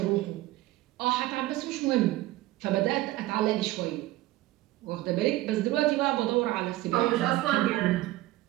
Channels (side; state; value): left; quieter; 16.9 dB